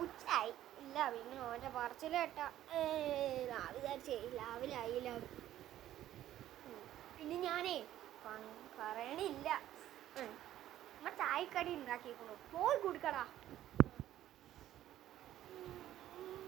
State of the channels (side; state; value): left; quieter; 12.8 dB